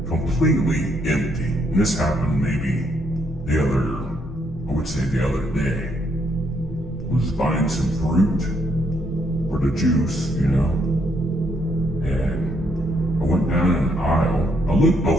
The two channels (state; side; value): normal; both; correlation 0.73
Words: completely empty. And this happened maybe the other day. I was buying some fruit for the juice, you know, and I went down an aisle. I looked